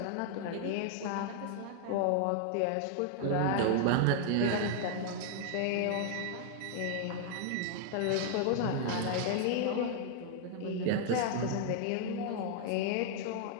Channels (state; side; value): different; both; correlation 0.00